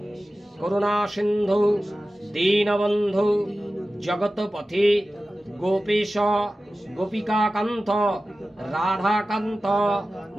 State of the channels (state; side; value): normal; both; correlation 0.95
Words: করুণা সিন্ধু দীনবন্ধু জগৎপথে গোপীশ গোপিকাকান্ত রাধাকান্ত